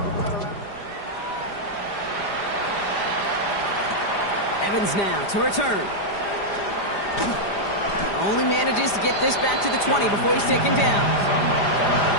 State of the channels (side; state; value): right; late; 5.0 ms